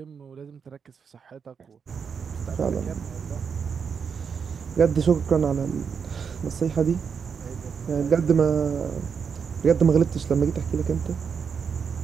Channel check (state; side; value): quieter; left; 6.4 dB